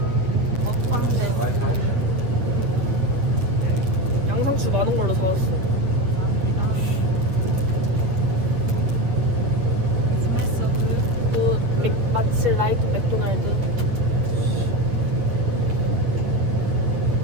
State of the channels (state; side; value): late; left; 8.4 ms